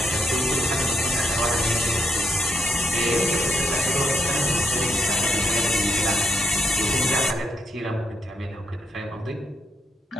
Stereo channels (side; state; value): both; normal; correlation 0.79